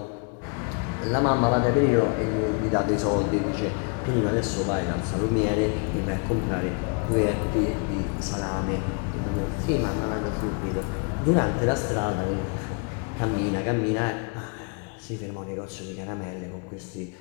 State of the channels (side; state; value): right; quieter; 36.2 dB